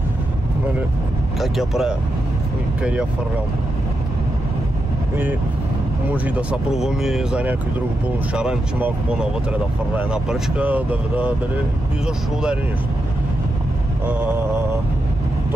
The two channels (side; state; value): both; normal; correlation 0.86